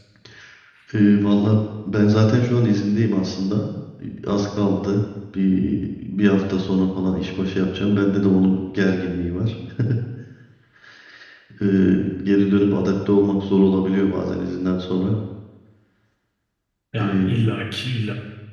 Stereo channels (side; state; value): both; identical; correlation 1.00